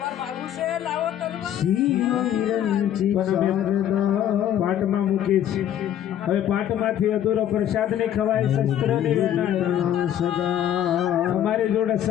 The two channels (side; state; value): right; quieter; 10.7 dB